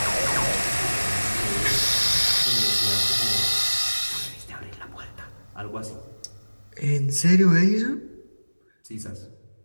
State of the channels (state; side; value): inverted; both; correlation -1.00